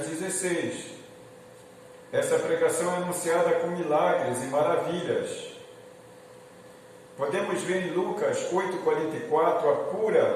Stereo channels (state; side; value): identical; both; correlation 1.00